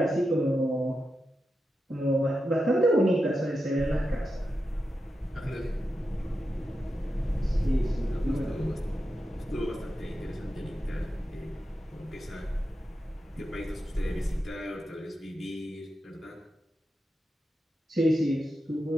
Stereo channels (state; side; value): normal; both; correlation 0.89